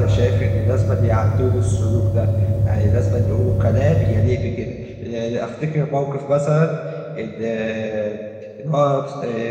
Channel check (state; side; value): identical; both; correlation 1.00